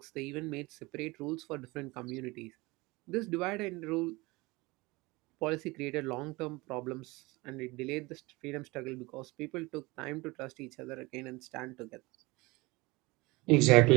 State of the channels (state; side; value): quieter; left; 23.0 dB